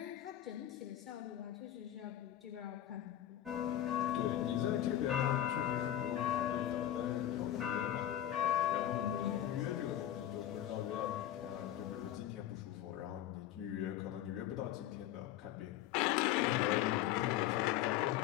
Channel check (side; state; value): right; quieter; 12.2 dB